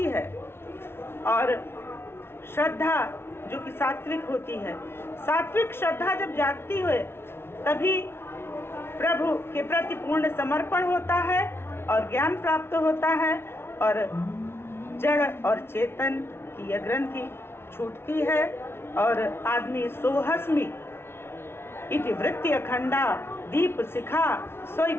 है। और श्रद्धा जो कि सात्विक होती है, सात्विक श्रद्धा जब जागती है तभी प्रभु के प्रति पूर्ण समर्पण होता है और ज्ञान प्राप्त होता है, और जड़ और चेतन की यह ग्रंथि छूटती है, और आदमी सोहस्मि इति वृत्ति अखंडा, दीप शिखा सोई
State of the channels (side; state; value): right; late; 0.12 ms